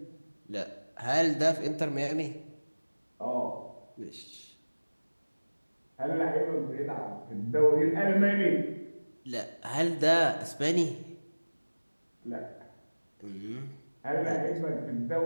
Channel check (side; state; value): both; inverted; correlation -1.00